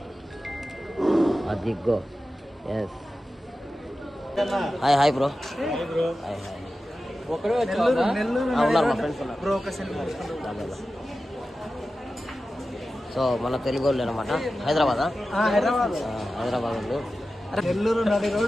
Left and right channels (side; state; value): both; normal; correlation 0.93